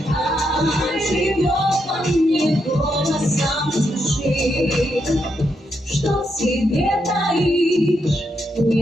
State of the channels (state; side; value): normal; both; correlation 0.81